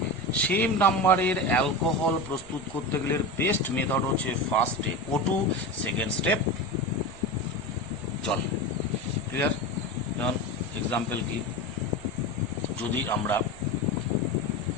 সেম নাম্বারের অ্যালকোহল প্রস্তুত করতে গেলে বেস্ট মেথড হচ্ছে first step O2, second step জল। ক্লিয়ার? যেমন এক্সাম্পল কি, যদি আমরা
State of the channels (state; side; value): noise; left; rumble, 20 dB below the sound